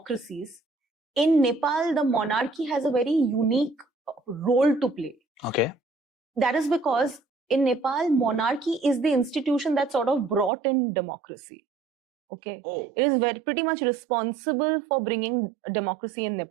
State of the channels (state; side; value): drops out; left; at 10.5 s